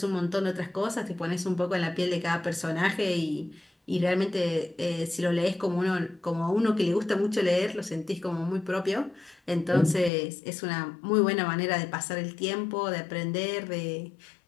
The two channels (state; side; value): drops out; right; at 10.1 s